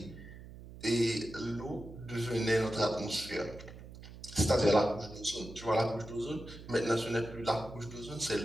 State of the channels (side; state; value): right; noise; hum, 15 dB below the sound